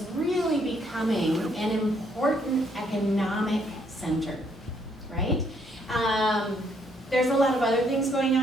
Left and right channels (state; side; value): normal; both; correlation 0.70